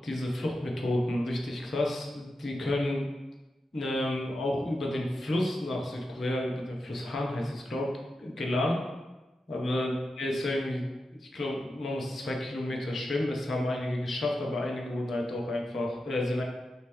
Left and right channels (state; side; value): normal; both; correlation 0.89